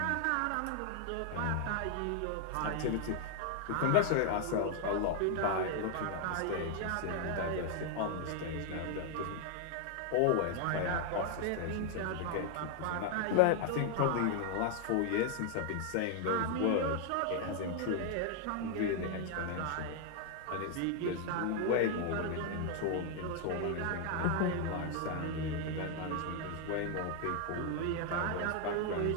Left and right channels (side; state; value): both; different; correlation 0.00